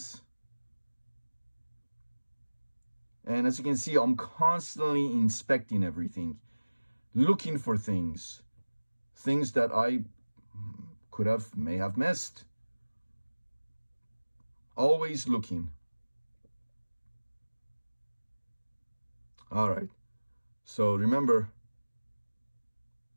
And as you can see, I'm constantly inspecting everything, looking for things that I may have missed. Always looking. All right, so remember,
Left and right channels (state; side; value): inverted; both; correlation -1.00